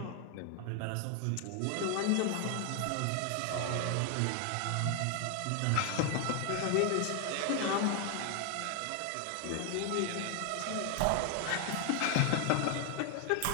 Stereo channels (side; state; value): both; different; correlation 0.01